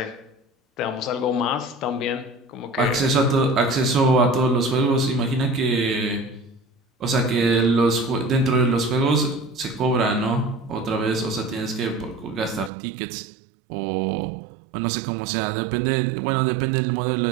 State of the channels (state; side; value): drops out; left; at 12.7 s